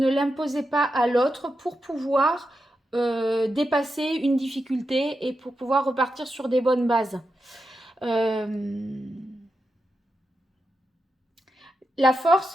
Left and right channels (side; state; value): both; normal; correlation 0.87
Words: l'imposez pas à l'autre pour pouvoir dépasser une difficulté et pour pouvoir repartir sur des bonnes bases. La force,